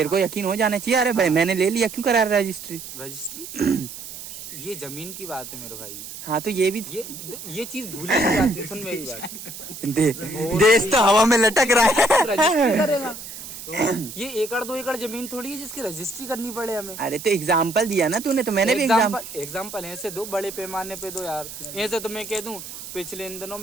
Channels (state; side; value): noise; right; hiss, 12 dB below the sound